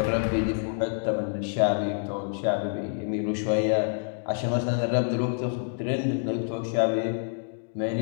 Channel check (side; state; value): right; silent; digital silence